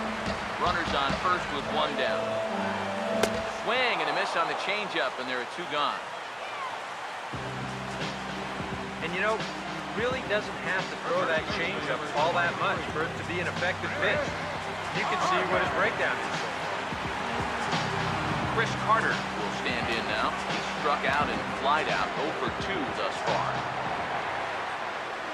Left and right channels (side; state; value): both; identical; correlation 1.00